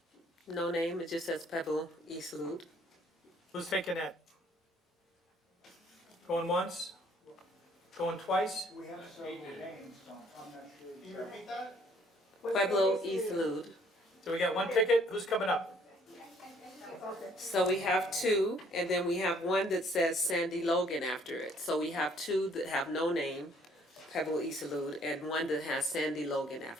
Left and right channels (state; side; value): normal; both; correlation 0.62